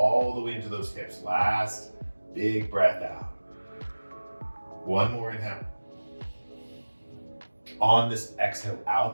the way into those hips. Last big breath out. 1 more inhale. On this exhale,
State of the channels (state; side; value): inverted; both; correlation -1.00